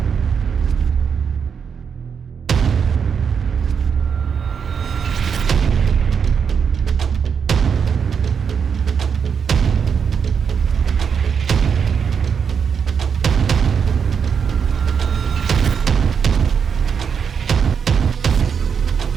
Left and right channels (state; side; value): quieter; left; 6.7 dB